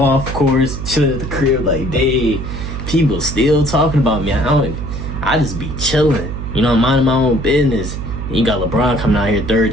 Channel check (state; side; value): noise; right; hum, 6 dB below the sound